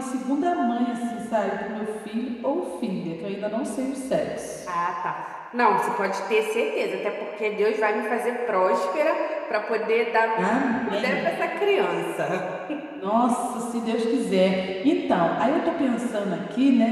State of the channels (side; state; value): both; identical; correlation 1.00